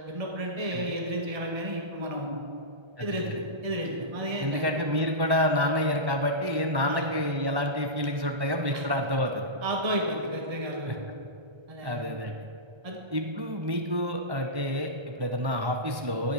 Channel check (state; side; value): late; left; 1.1 ms